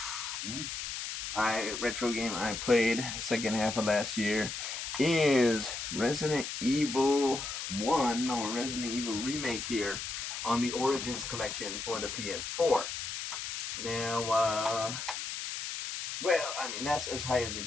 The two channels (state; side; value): noise; left; hiss, 5 dB below the sound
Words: retro game I played second half of last year, is Resident Evil 1, or Resident Evil Remake, here on the Origins collection for the PS4. Now, well, I mean, that's as high as it